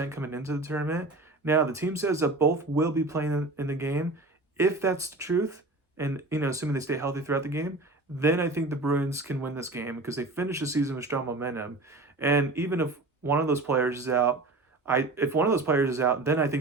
coming into the tournament. Now, the team says that both will be playing in the game. If that's the truth, and assuming they stay healthy throughout the game, then I think the Bruins can win this game because they finish the season with strong momentum. And even if one of those players is out, if one of those players is out, then I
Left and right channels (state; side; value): quieter; left; 3.1 dB